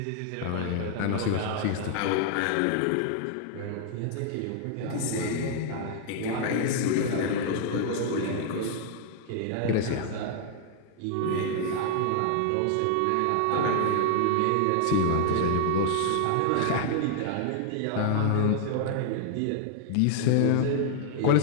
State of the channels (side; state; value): both; different; correlation 0.00